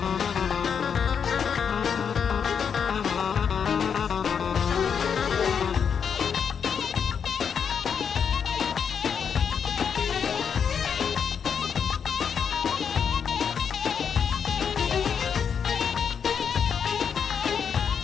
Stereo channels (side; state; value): right; quieter; 7.1 dB